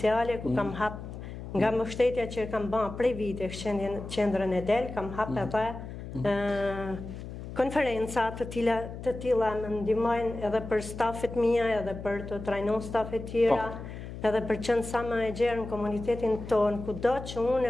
ku kam hap nga mbështetja që kam bën prej vitesh qendrën e Del, kam hap edhe konferenca të tilla më ndihmojnë edhe për stafet mia, edhe për të trajnuar stafet tjera, edhe për qenë sa më e gjerë në komunitetin tonë, kudo që unë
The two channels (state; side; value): noise; left; hum, 10 dB below the sound